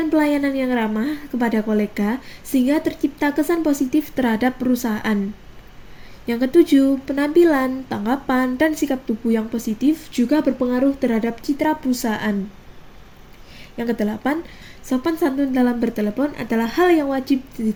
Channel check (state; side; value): identical; both; correlation 1.00